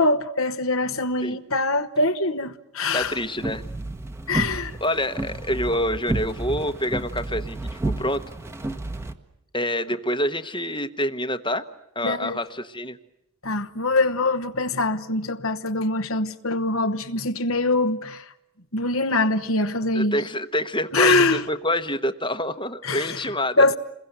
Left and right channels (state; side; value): normal; both; correlation 0.02